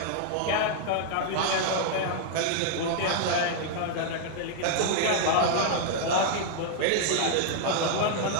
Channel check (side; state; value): both; different; correlation -0.01